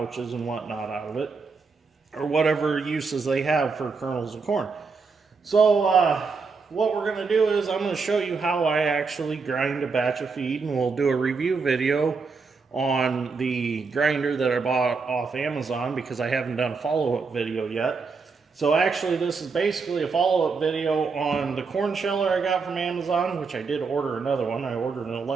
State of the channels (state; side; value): quieter; left; 4.7 dB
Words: and whatnot out of it, or whatever uses they have for kernels of corn. So what we're going to do is I'm going to show you how I actually grind a batch of feed, and we'll do a review video on the grinder that I bought off Amazon, because I haven't done a follow-up video yet. So actually this is basically a follow-up video on the corn sheller I got from Amazon, which I did order another one. I ordered an